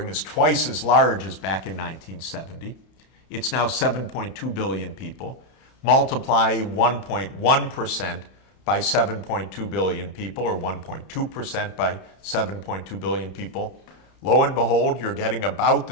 is twice as large as back in 1970. It's now 7.2 billion people. Multiply 1.1% by 7.2 billion people, or 1.2% by 7.2 billion people. Lo and behold, you're getting about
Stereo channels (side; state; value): right; late; 32 ms